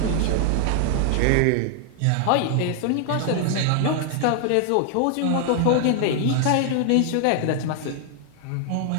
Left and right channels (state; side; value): different; both; correlation 0.00